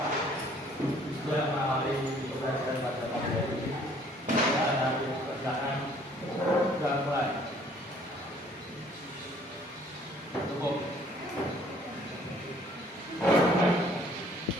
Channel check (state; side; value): normal; both; correlation 0.58